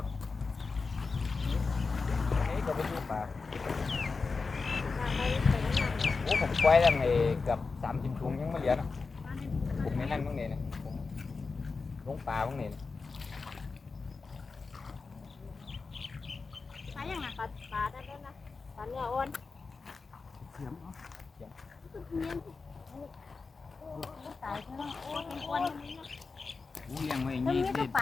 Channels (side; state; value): right; quieter; 4.4 dB